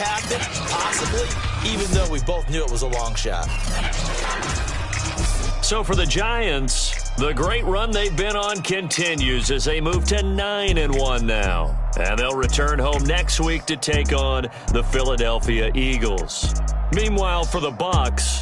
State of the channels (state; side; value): identical; both; correlation 1.00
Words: Possibly, even though we both knew it was a long shot. So for the Giants, the great run they've been on continues as they move to 9-1 now. And they'll return home next week to take on the Philadelphia Eagles. Meanwhile, for the